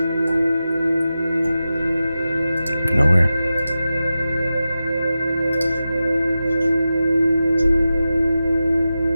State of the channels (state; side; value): inverted; both; correlation -0.92